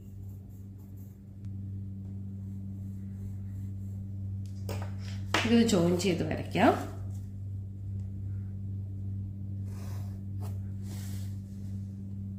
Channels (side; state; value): both; identical; correlation 1.00